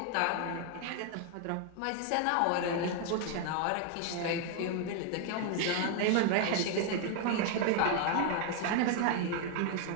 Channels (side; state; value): both; different; correlation 0.00